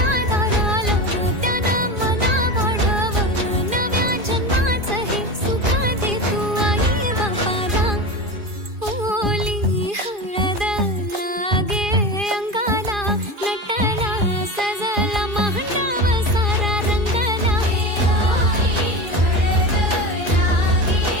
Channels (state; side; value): late; left; 2.4 ms